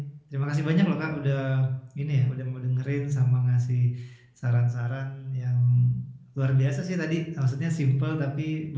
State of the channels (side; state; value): both; identical; correlation 1.00